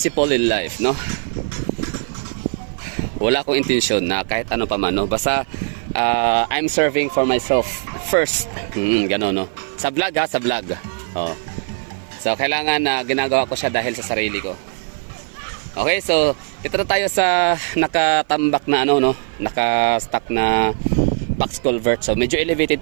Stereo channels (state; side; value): silent; left; 56 dB below the other